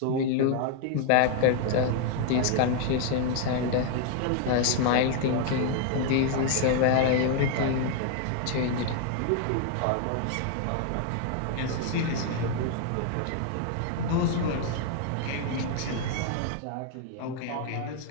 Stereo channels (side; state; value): both; different; correlation 0.00